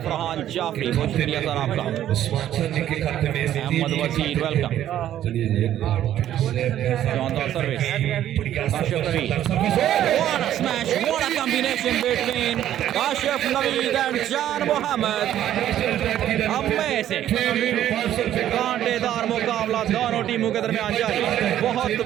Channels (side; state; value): left; quieter; 11.8 dB